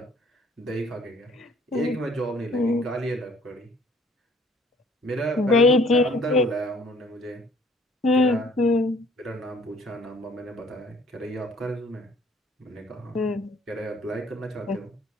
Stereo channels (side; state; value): both; normal; correlation 0.57